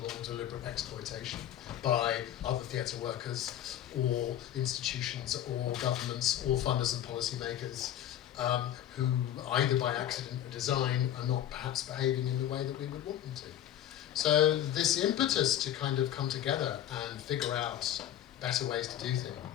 or deliberate exploitation by other theatre workers or institutions or governments or funders and policymakers who, either by accident or design, are not perhaps behaving in the way that we would want them to. So this impetus to kind of come together and figure out better ways to do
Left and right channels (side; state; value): right; quieter; 11.4 dB